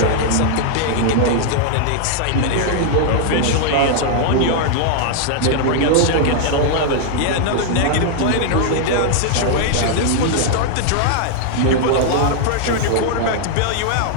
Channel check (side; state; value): both; different; correlation -0.01